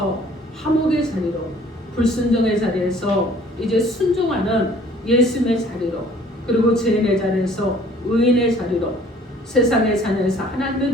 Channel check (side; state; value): both; normal; correlation 0.55